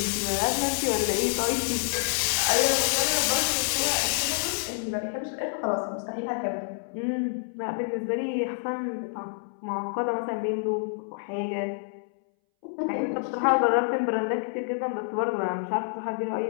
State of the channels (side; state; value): right; silent; 60 dB below the other